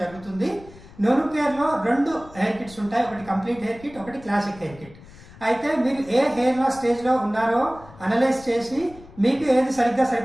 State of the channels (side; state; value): left; noise; rumble, 20 dB below the sound